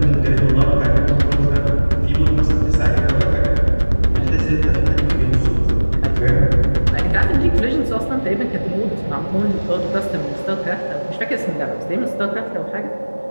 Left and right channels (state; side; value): inverted; both; correlation -1.00